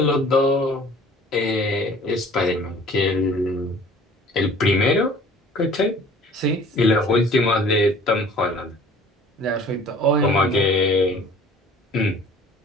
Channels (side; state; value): both; normal; correlation 0.49